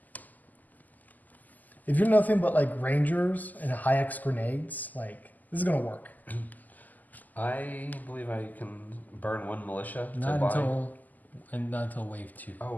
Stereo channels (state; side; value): late; right; 0.082 ms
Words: If you're nothing but like Rangers and high X grenades, like this is going to work. I believe I can burn 1 militia to Not buy. not until wave 2.